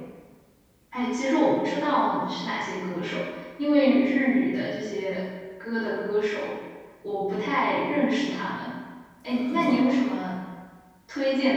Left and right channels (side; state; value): both; identical; correlation 1.00